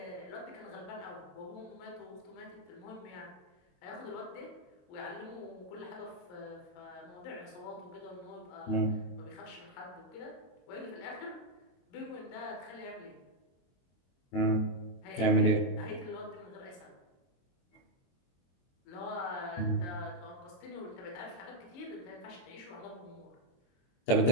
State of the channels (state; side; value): late; right; 22 ms